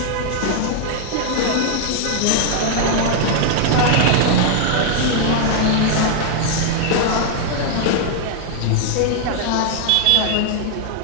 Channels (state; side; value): different; both; correlation 0.00